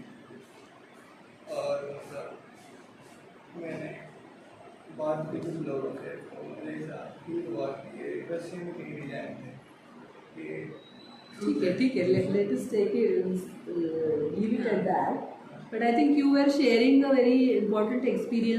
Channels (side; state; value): both; identical; correlation 1.00